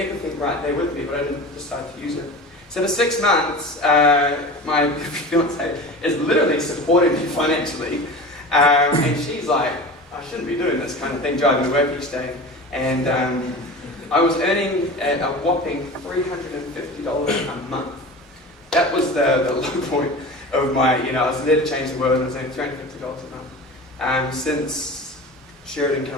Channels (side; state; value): both; normal; correlation 0.33